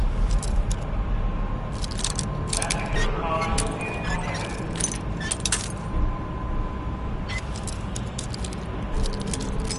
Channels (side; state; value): both; identical; correlation 1.00